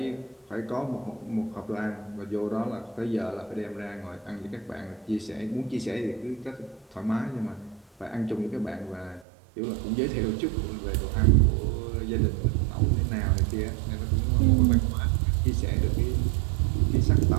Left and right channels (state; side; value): drops out; left; at 9.2 s